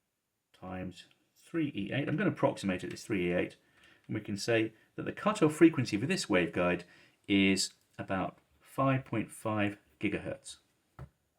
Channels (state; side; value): identical; both; correlation 1.00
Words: times 3e8. I'm going to approximate it as 3e8, and we can say that the cutoff frequency for this waveguide is about 5.5 gigahertz.